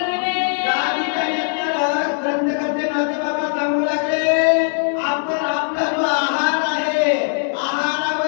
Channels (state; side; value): silent; right; 58 dB below the other